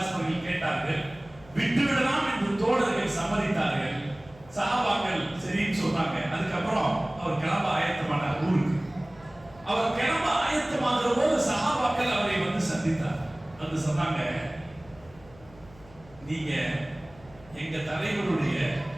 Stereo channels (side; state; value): left; noise; hum, 24 dB below the sound